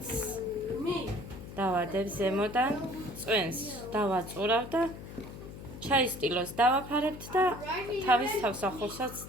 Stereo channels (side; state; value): left; noise; hum, 13 dB below the sound